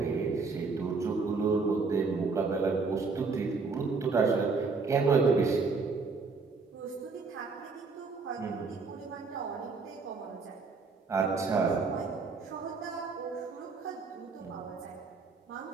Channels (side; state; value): left; quieter; 4.4 dB